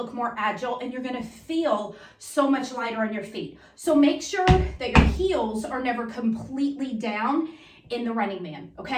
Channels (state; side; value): identical; both; correlation 1.00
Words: more agile and you're gonna feel so much lighter on your feet. So make sure that your heels are never completely down in the running man,